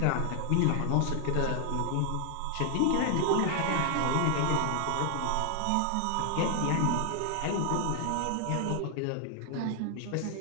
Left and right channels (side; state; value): both; different; correlation 0.00